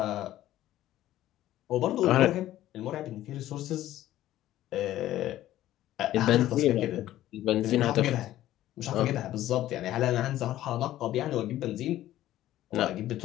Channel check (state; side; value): quieter; right; 13.9 dB